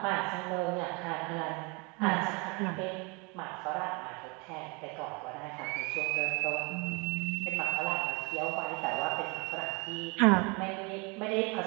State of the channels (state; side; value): quieter; left; 29.9 dB